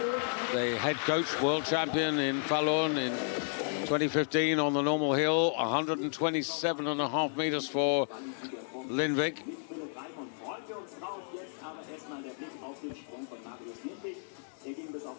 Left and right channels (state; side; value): silent; right; digital silence